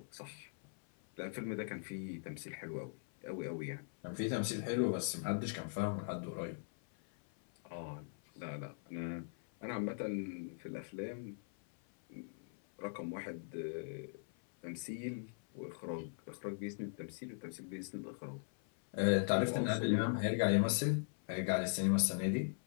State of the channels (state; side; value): silent; right; 51 dB below the other